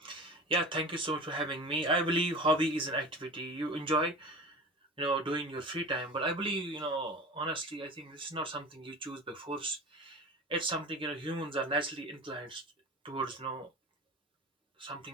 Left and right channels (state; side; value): normal; both; correlation 0.35